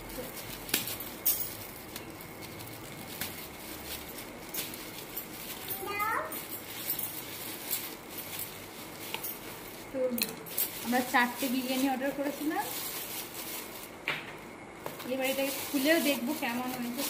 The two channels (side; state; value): both; identical; correlation 1.00